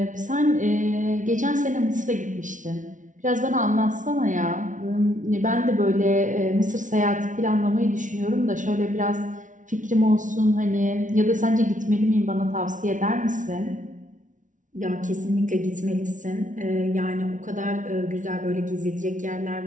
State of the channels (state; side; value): late; left; 0.37 ms